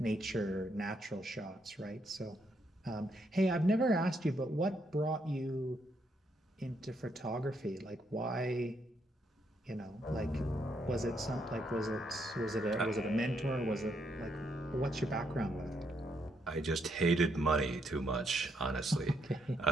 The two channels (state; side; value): normal; both; correlation 0.75